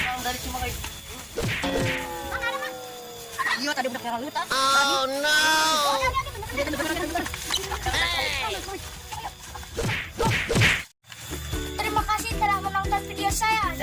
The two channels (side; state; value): both; identical; correlation 1.00